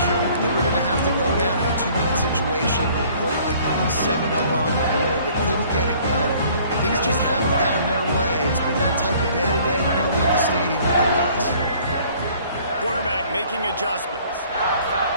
over. They were going to have to go down in a 2-minute situation, put at least 7 up on the board. They couldn't get it done. Things just haven't gone their way. It's been that type of day today. They're going to leave the stadium with the loss. Quarterback making adjustments.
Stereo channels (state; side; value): inverted; both; correlation -0.56